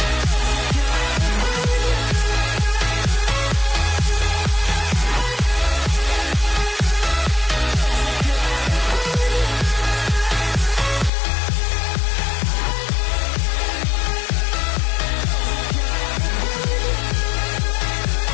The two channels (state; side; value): drops out; right; at 11.1 s